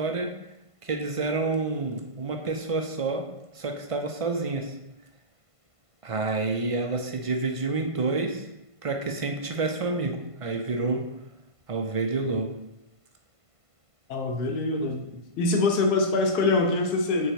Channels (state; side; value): late; left; 1.5 ms